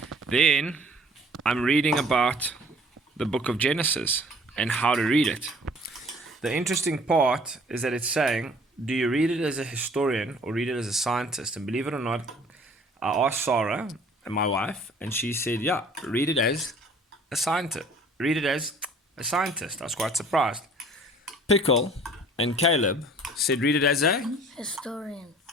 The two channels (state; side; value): normal; both; correlation 0.52